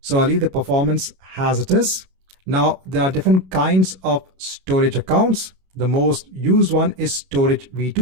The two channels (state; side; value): late; left; 32 ms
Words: I'll leave the performance as it is. Now there are different kinds of storage accounts. The most used one is storage